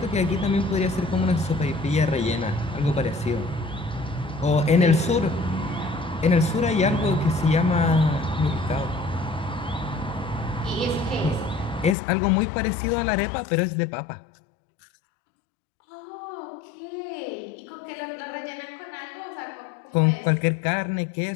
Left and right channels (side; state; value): right; drops out; at 12.0 s